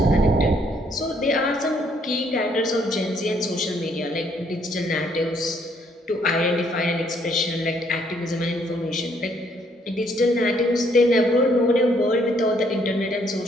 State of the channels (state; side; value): normal; both; correlation 0.68